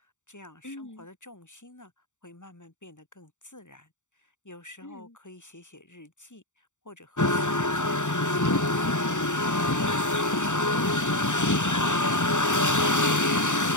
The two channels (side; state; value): right; late; 0.85 ms